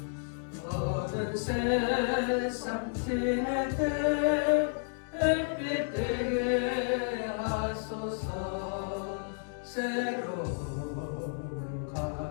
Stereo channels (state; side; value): silent; right; digital silence